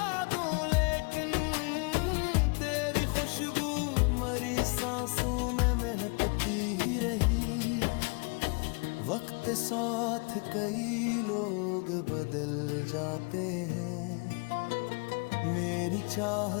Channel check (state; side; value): quieter; right; 33.4 dB